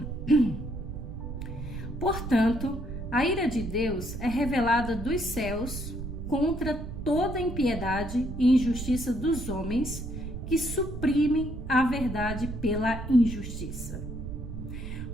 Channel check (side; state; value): right; noise; rumble, 7 dB below the sound